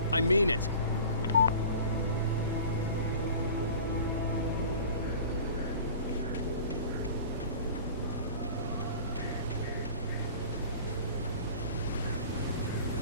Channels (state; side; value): inverted; both; correlation -0.42